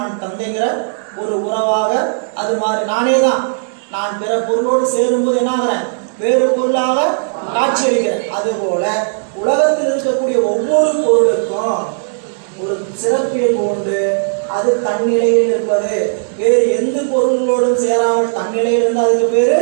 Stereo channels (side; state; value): left; silent; digital silence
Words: தந்தைங்கிற ஒரு உறவாக அது மாறி நானே தான். நான் பிற பொருளோடு சேரும்போது என்ன ஆகிறேன்? வேறு பொருளாக காட்சி அளிக்கிறேன். அதுபோல உலகத்தில் இருக்கக்கூடிய ஒவ்வொரு பொருளுக்கும் ஒரு சிறப்பியல்பு உண்டு. அது தன்னிலையில் இருப்பது. வேறு எந்த பொருள்களோடும் சேராமல் தன்னிலையில் இருந்தால் அதுக்கு பேரு